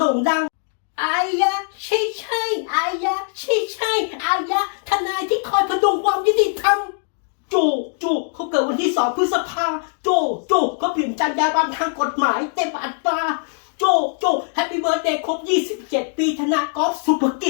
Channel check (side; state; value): right; silent; digital silence